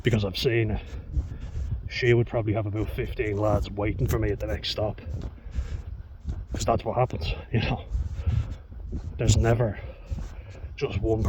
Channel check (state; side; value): identical; both; correlation 1.00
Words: because I've seen it, she would probably have about 15 lads waiting for me at the next stop, because that's what happens, you know. There's never just one